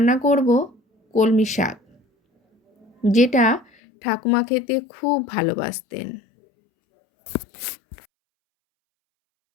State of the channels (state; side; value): drops out; right; at 3.7 s